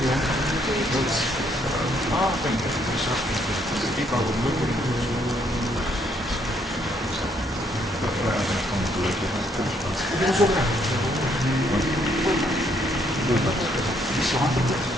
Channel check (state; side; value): normal; both; correlation 0.70